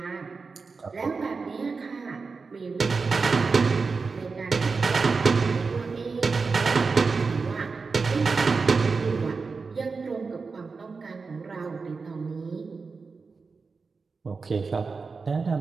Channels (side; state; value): left; quieter; 4.6 dB